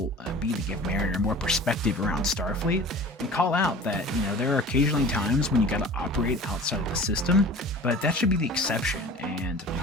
be to give Mariner more perspective around Starfleet and call out that, there are occasionally times when you gotta operate outside of the system, but that should be the exception and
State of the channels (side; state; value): both; normal; correlation 0.40